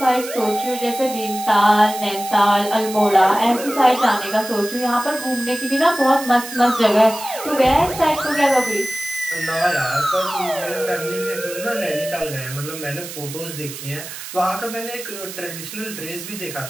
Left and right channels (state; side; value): noise; right; hiss, 11 dB below the sound